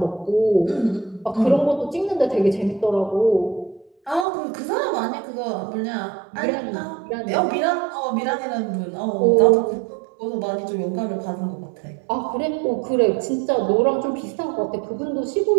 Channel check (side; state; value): left; drops out; at 4.2 s